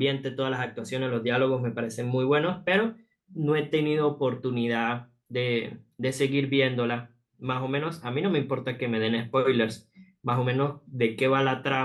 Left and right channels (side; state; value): both; identical; correlation 1.00